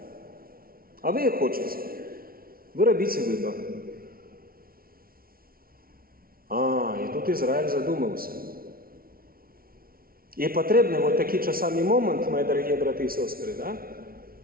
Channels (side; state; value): left; late; 0.43 ms